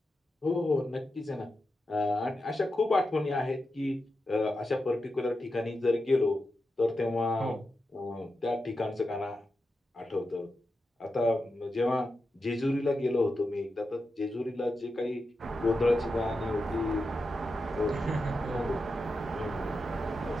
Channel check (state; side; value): normal; both; correlation 0.89